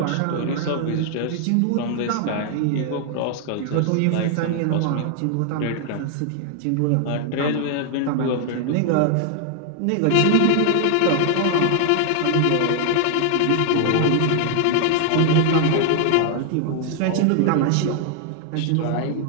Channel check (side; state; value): both; different; correlation 0.00